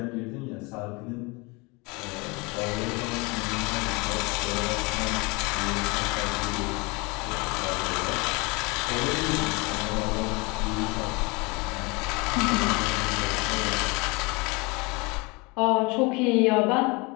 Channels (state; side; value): quieter; right; 27.3 dB